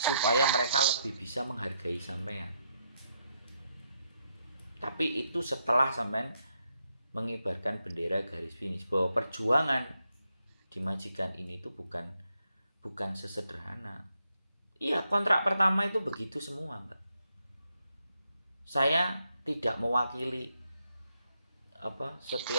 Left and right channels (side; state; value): both; inverted; correlation -0.80